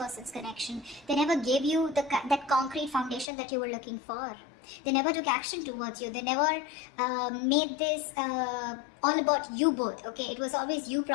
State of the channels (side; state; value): right; drops out; at 3.2 s